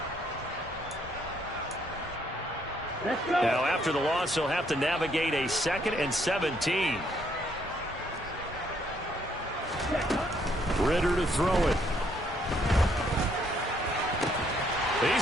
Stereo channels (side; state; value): both; normal; correlation 0.69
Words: Now, after the loss, he'll have to navigate a 2nd and 17. Ritter to throw it.